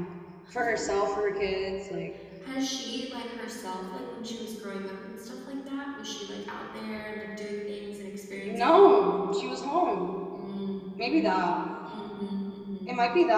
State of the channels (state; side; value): identical; both; correlation 1.00